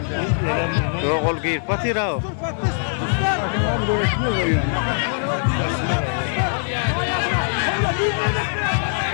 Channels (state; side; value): silent; right; digital silence